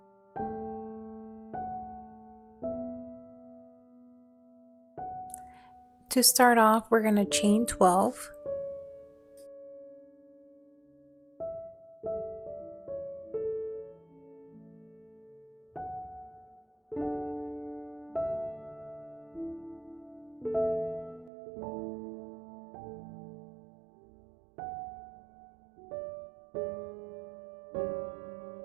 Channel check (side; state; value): left; drops out; at 21.3 s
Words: To start off, we're going to chain 12.